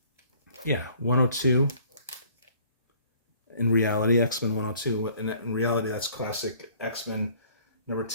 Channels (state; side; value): inverted; both; correlation -0.56